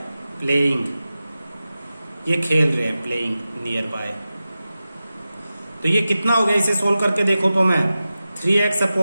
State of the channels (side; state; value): both; inverted; correlation -0.94